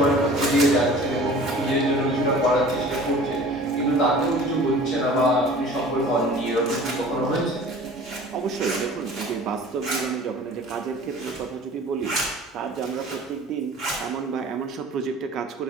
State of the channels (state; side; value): normal; both; correlation 0.45